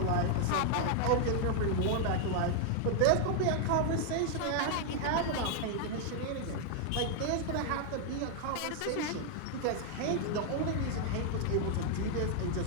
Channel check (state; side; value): different; both; correlation 0.00